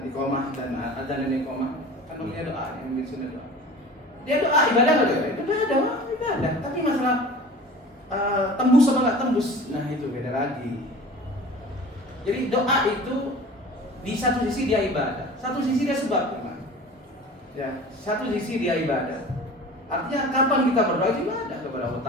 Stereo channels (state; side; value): normal; both; correlation 0.40